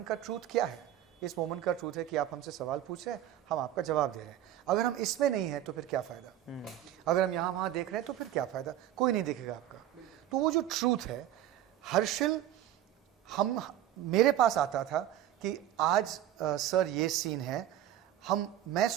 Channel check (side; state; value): left; quieter; 12.1 dB